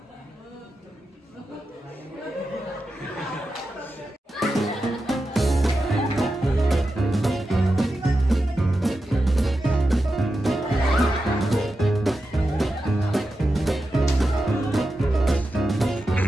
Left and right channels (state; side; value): normal; both; correlation 0.90